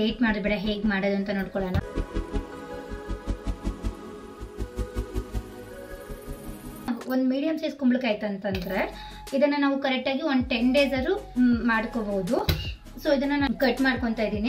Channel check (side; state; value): both; identical; correlation 1.00